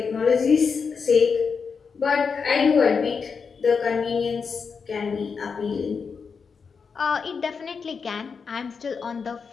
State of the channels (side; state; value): right; quieter; 5.6 dB